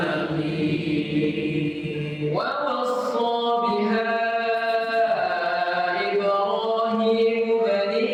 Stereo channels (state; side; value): identical; both; correlation 1.00